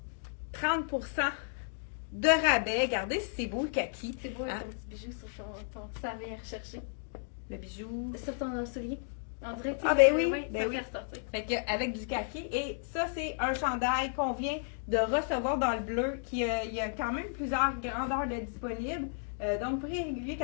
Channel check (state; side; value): silent; right; digital silence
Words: 30% de rabais. Regardez si c'est beau le kaki. C'est beau, hein? Ton petit bijou sur ton ça vient rechercher. Le bijou. Sur ton soulier. On dirait que oui, ça fait ressortir. Fait que, avec du kaki. Et ça, c'est un chandail qu'on vient de recevoir dans le bleu. Il y a quand même plusieurs grandeurs de disponibles. Donc, prix régulier